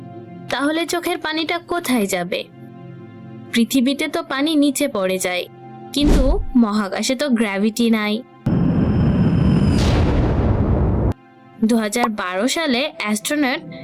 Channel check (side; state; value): both; identical; correlation 1.00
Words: তাহলে চোখের পানিটা কোথায় যাবে? পৃথিবীতে তো পানি নিচে পড়ে যায়, কিন্তু মহাকাশে তো গ্র্যাভিটি নাই। 2012 সালে অ্যাস্ট্রোনট